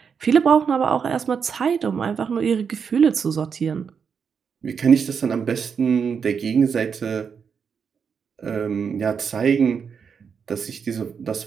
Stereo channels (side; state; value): left; quieter; 6.5 dB